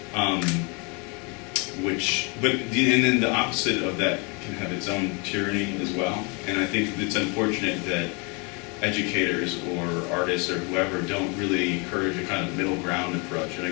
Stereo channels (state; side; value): quieter; right; 31.7 dB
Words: and then the opposite of that can have its own tyranny as well. And I think it's unfortunate that educators or artists or whoever don't really encourage a kind of middle ground approach. And I